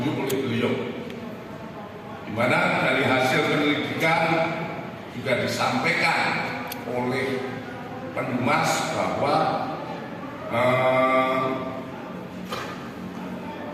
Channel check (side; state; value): both; identical; correlation 1.00